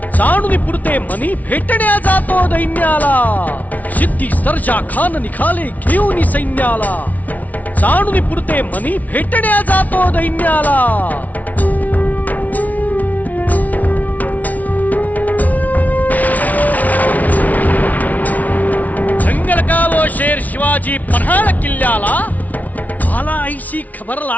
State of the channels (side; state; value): right; late; 0.074 ms